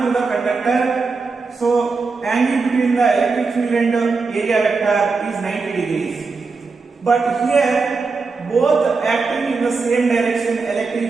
to the conductor. So angle between the electric field and area vector is 90 degrees. But here both acting in the same direction,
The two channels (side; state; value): left; quieter; 4.4 dB